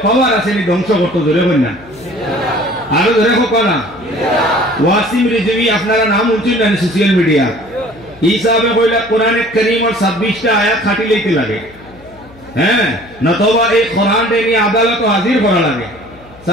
পাওয়ার আছে নি ধ্বংস করতে জোরে হয় না আরো ধরে হোক না ওয়াসিম রিজভী আপনারা নাম উঠছেন না সোশ্যাল মিডিয়া এই সাহেব কইলা কোরআনে কারীমের 26টা আয়াত খাটি লইতে লাগে হ্যাঁ নতবা এই কোরআন নিয়ে আদালতে হাজির করা লাগে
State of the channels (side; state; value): left; noise; hum, 24 dB below the sound